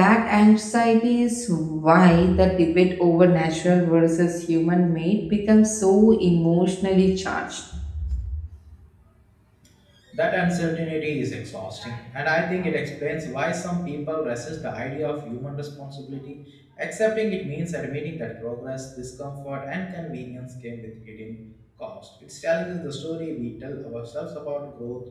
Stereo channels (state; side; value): identical; both; correlation 1.00